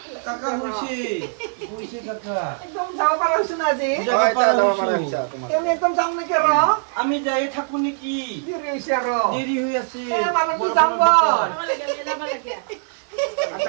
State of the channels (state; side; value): silent; left; 63 dB below the other